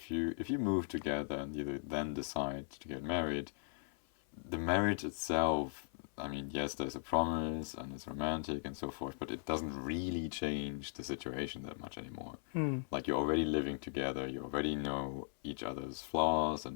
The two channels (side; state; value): right; silent; 52 dB below the other